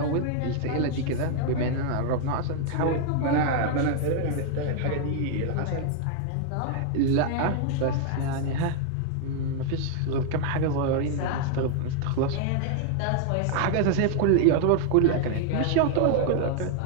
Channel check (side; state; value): both; different; correlation 0.00